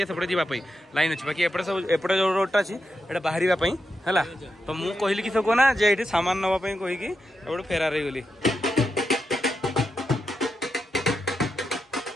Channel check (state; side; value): normal; both; correlation 0.86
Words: सेपटे जावाई लाइन अच्छी बाकी एपटे सब एपटे जो रोडटा अच्छी ये बाहर है तो मुझे कहली कि सब कहना जे ये सामान नापी कहीकि एपटे फेरार हो गली।